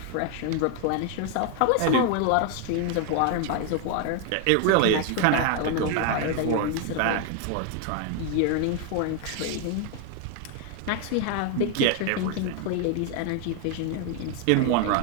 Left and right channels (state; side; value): different; both; correlation 0.00